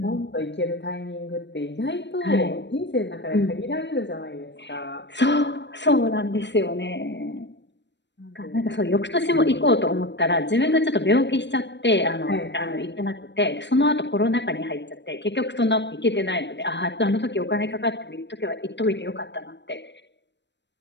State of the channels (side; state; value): right; late; 0.52 ms